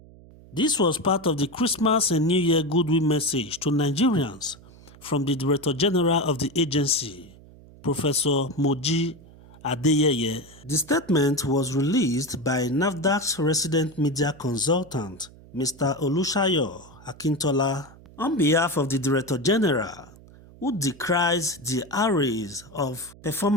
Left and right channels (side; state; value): right; noise; hum, 22 dB below the sound